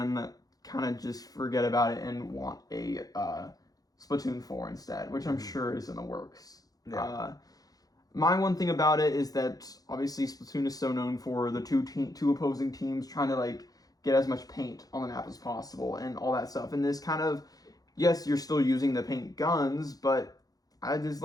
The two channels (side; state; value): right; late; 0.18 ms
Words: kind of just forget about it and want a Splatoon 4 instead, which I'm sure is in the works. Yeah. My one thing about it is that obviously Splatoon is so known for the two opposing teams trying to like get as much paint on the map as possible and all that stuff. And this kind of, yes, you're still using the paint guns, but there's